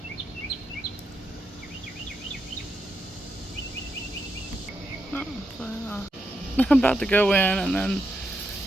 I'm about to go in, and then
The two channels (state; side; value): normal; both; correlation 0.84